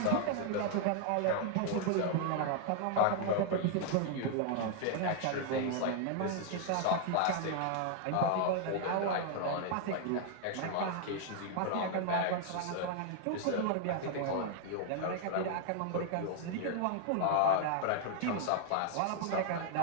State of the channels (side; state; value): both; different; correlation 0.00